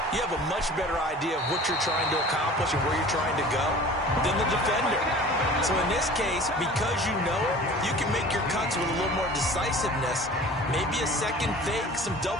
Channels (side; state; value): both; normal; correlation 0.43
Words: you have a much better idea of what you're trying to accomplish and where you're trying to go than the defender. So in this case, because you know it, you can make your cuts with a little more decisiveness, maybe a second fake, some